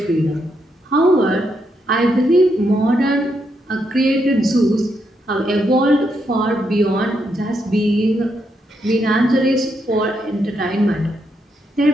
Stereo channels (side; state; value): both; normal; correlation 0.79